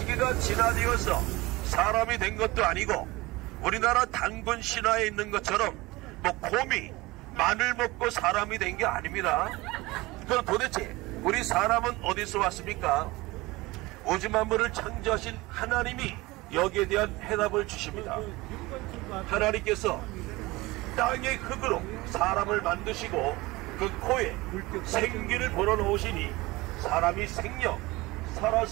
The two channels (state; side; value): quieter; left; 21.3 dB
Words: 진화되어서 사람이 된 것도 아니고, 우리나라 단군 신화에 있는 것처럼 곰이 마늘 먹고 사람이 된 게 아닙니다. 그럼 도대체 우리 사람은 어디서 왔습니까? 우주 만물을 창조하신 하나님이 여기에 대한 해답을 주십니다. 하나님께서 땅의 흙으로 사람을 만드시고 그 코에 생기를 불어넣으시니 사람이 생명,